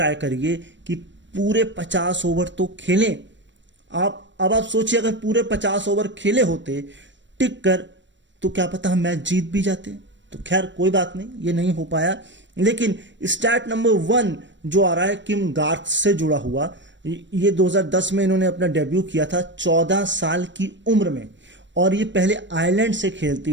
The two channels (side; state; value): left; late; 0.53 ms